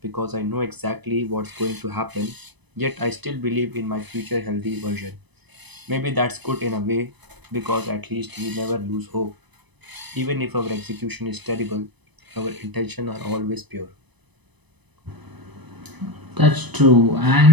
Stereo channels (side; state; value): left; late; 1.0 ms